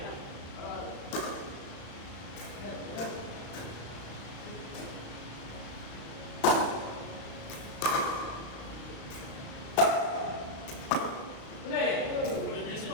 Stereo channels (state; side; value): late; right; 36 ms